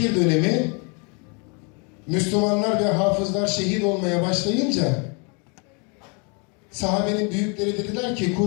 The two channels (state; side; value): quieter; right; 34.1 dB